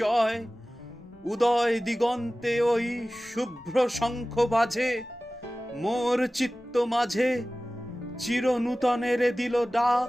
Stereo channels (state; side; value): normal; both; correlation 0.97